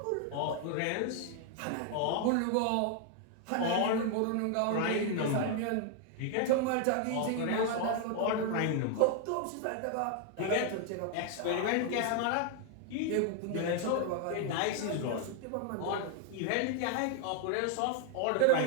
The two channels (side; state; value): both; different; correlation 0.00